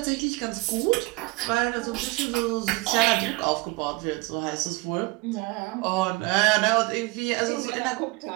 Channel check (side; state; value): left; quieter; 24.2 dB